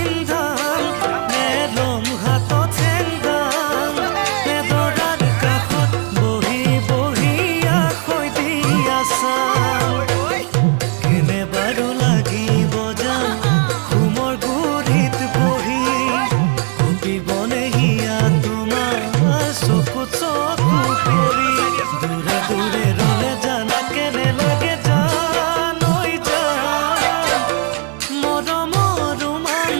নে লম হাতত চেংদাম নে দৰাৰ কাষত বহি বহি আখৈ দি আছাম কেনে বাৰু লাগিব যাম ঘুমৰ গুৰিত বহি কপিবনে হিয়া তোমাৰ চকুত চকু পৰি দূৰে দূৰে ৰলে জানা কেনে লাগে জানৈ জান মৰমৰ ৰোমান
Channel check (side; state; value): left; quieter; 36.3 dB